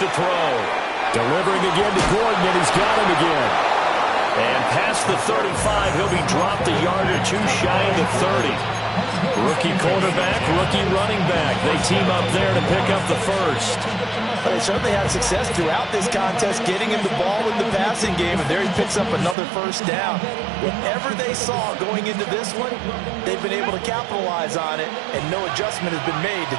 throw. Delivering again to Gordon, and he's got him again. And past the 35, he'll be dropped a yard or two shy of the 30. Rookie quarterback, rookie running back. They team up there to pick up the first. Well, they certainly had success throughout this contest getting him the ball in the passing game, and there he picks up another first down. Whatever they saw going into this one, they've been able to capitalize on it, and no adjustment has been made to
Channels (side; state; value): left; drops out; at 19.4 s